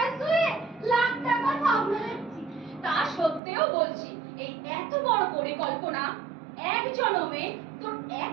শুয়ে লাখ টাকা সামলাচ্ছি। তা সত্ত্বেও বলছি, এই এত বড় পরিকল্পনা এক জনমে তোর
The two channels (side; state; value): left; drops out; at 3.4 s